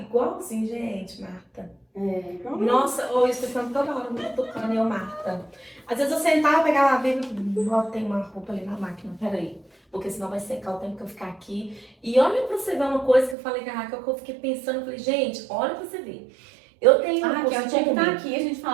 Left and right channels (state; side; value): drops out; left; at 13.4 s